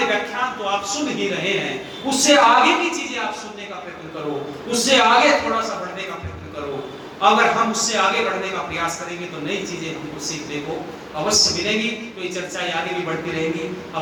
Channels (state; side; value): identical; both; correlation 1.00